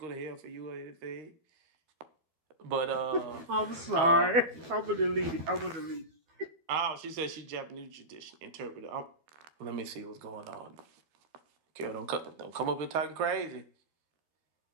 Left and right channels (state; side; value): late; left; 12 ms